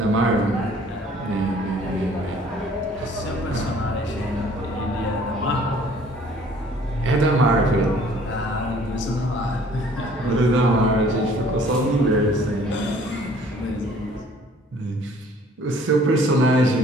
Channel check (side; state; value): both; normal; correlation 0.55